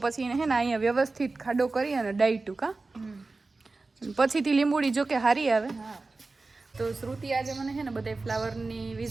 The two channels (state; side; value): quieter; left; 3.6 dB